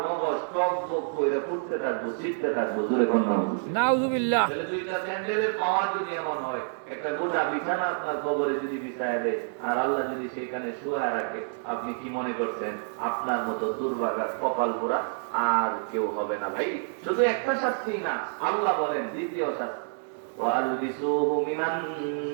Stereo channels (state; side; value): silent; left; digital silence